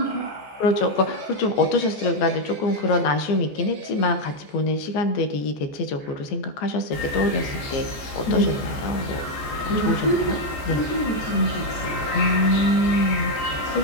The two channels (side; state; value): right; late; 14 ms